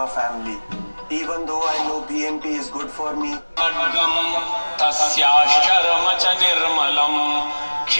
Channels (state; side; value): inverted; both; correlation -1.00